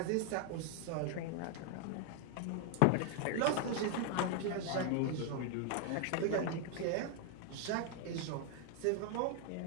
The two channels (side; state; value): both; different; correlation 0.00